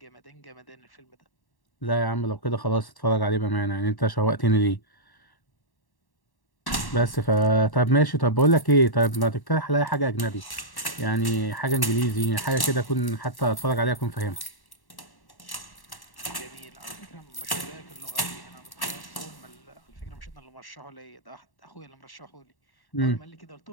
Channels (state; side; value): late; right; 1.1 ms